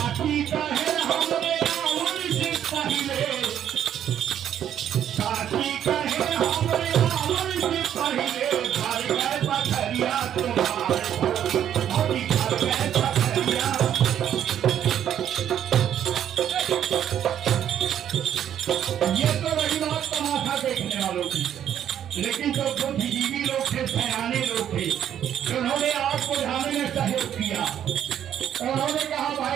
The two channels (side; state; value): left; quieter; 10.0 dB